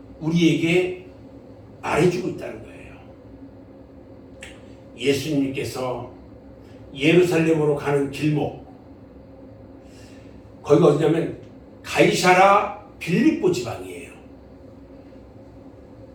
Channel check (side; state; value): both; identical; correlation 1.00